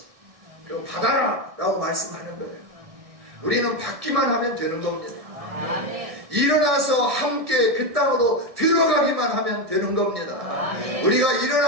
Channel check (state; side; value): late; left; 1.7 ms